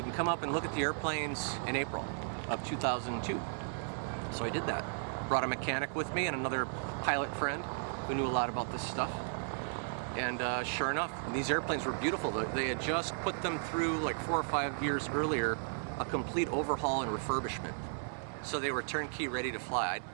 can come up and look at the airplanes in April of 2002. So I did that. Brought a mechanic with me and another pilot friend who knew a lot about this stuff. And sure enough, these airplanes were beautiful. They had just put them through, like 4 or 5 years earlier, a complete overhaul and refurbishment. So they were turnkey ready to fly.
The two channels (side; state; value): left; silent; digital silence